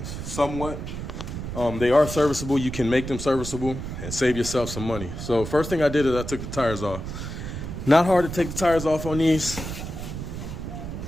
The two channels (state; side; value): noise; right; rumble, 7 dB below the sound